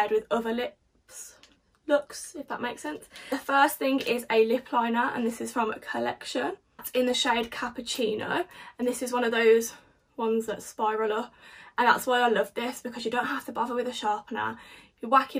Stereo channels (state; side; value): identical; both; correlation 1.00